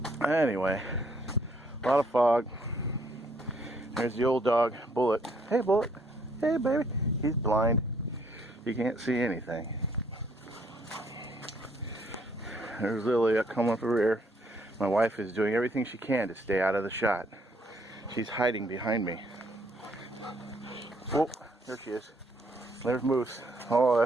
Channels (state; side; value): normal; both; correlation 0.67